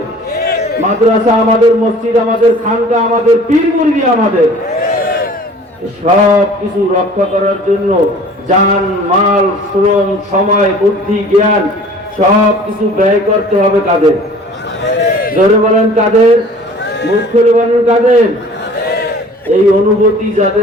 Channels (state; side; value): normal; both; correlation 0.48